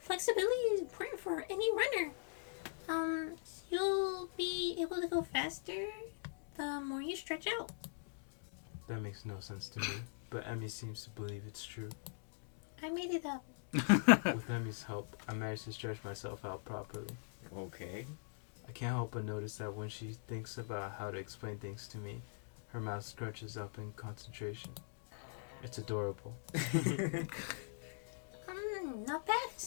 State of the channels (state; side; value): silent; right; digital silence